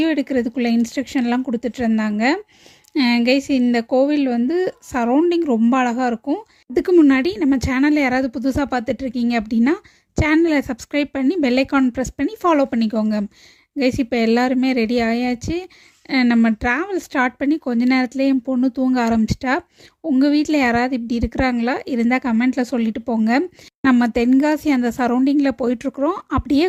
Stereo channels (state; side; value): identical; both; correlation 1.00